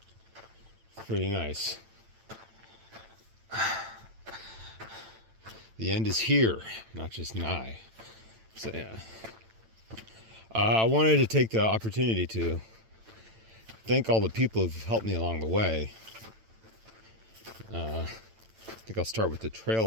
pretty nice. The end is here, not just nigh. So yeah. I wanted to take the opportunity to thank all the people who've helped me along the way. I think I'll start with the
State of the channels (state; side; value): late; left; 8.9 ms